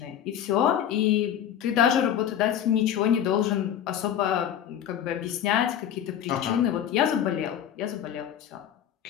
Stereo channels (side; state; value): right; quieter; 9.9 dB